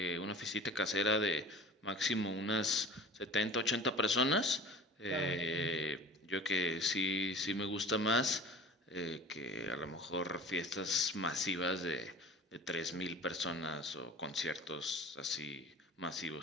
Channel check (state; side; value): normal; both; correlation 0.41